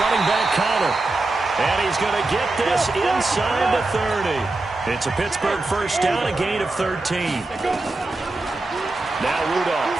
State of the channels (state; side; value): quieter; left; 3.1 dB